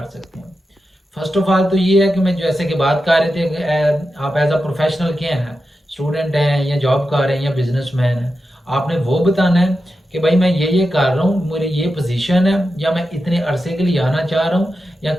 सकते हैं। फर्स्ट ऑफ ऑल तो ये है कि मैं जैसे कि बात कर रहे थे कि आप एज अ प्रोफेशनल क्या हैं, स्टूडेंट हैं या जॉब कर रहे हैं या बिजनेसमैन हैं, आपने वो बताना है कि भाई मैं ये कर रहा हूँ, मेरी ये पोजीशन है, या मैं इतने अरसे के लिए आना चाह रहा हूँ, या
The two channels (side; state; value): both; normal; correlation 0.90